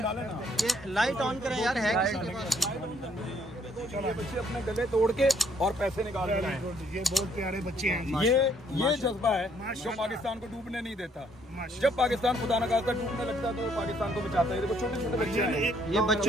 ये लाइट ऑन करें यार, है ये बच्चे अपने गले तोड़ के और पैसे निकाल के लाए। ये बहुत प्यारे बच्चे हैं। ये जज्बा है जो पाकिस्तान को डूबने नहीं देता। जब पाकिस्तान खुदा न खास्ता डूबने लगता है तो पाकिस्तान को बचाता है। देखो छोटे छोटे बच्चे हैं, ये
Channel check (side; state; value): both; normal; correlation 0.67